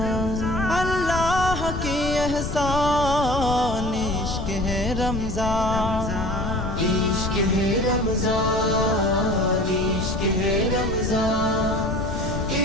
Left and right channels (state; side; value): noise; left; rumble, 4 dB below the sound